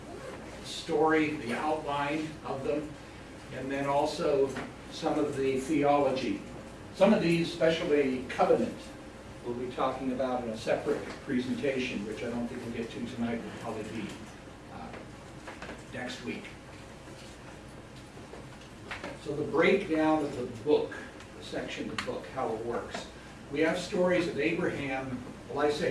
story, the outline of them, and then also some of the theology. Some of these, especially covenant, we'll be talking about in a separate presentation, which I don't think we'll get to tonight. Will probably be next week. So the breakdown of the book, the section of the book, how it works. We have stories of Abraham, well, I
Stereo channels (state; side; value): identical; both; correlation 1.00